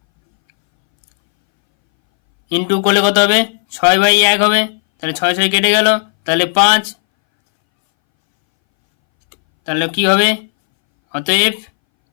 ইন্টু করলে কত হবে 6/1 হবে, তাহলে 6 6 কেটে গেল, তাহলে 5, তাহলে কি হবে, অতএব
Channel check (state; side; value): silent; right; 65 dB below the other